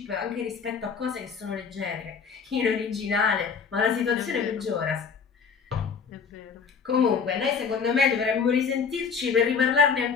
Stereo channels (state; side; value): quieter; right; 6.0 dB